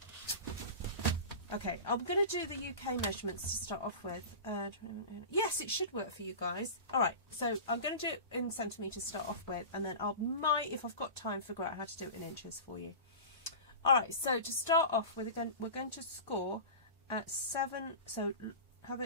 Okay, I'm going to do the UK measurements to start off with. Yes, it should work for you guys. All right, so I'm going to do it in centimetres to start off with, and then I might, if I've got time, figure out how to do it in inches for you. All right, so to start off with, we're going to score at 7. So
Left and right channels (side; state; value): both; inverted; correlation -0.31